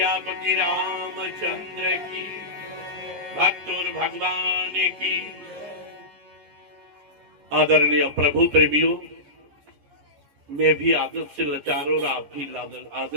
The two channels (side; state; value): left; late; 14 ms